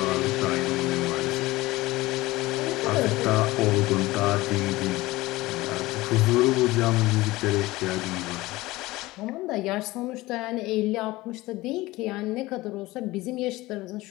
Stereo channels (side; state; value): right; quieter; 19.4 dB